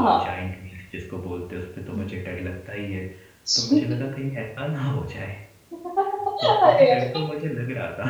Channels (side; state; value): both; identical; correlation 1.00